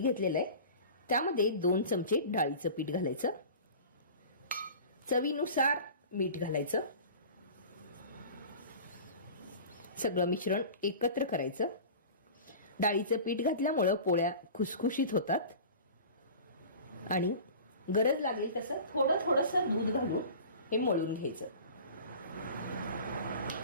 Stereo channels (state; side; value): inverted; both; correlation -0.39